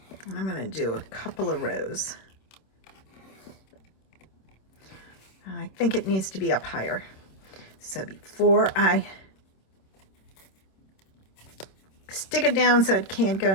And I'm gonna do a couple of rows. I think it needs to be up higher. So before I stick it down so it can't go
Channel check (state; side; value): late; right; 26 ms